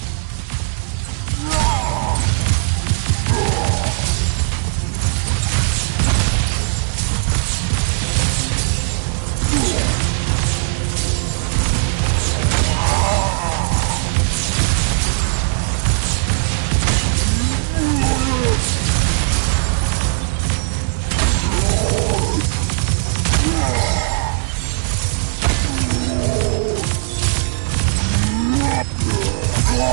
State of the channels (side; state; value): left; silent; digital silence